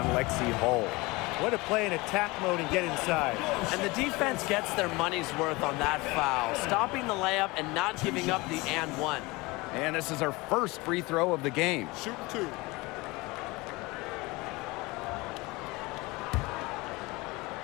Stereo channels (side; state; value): right; quieter; 23.3 dB